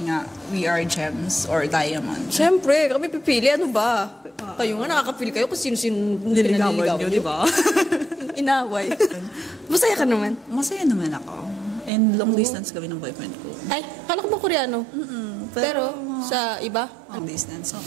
nga, we are gems or diamonds. Siyempre, kami pipili. Ano ba? Kayo nga nakakapili kayo kung sino-sino nililigawan nyo, di ba? Inaway. Masaya ka naman. Masaya naman ako. And long distance kami ng boyfriend ko. Ay, kala ko ba Koreano? Pero, sa iba? Long distance. So,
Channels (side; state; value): left; drops out; at 11.9 s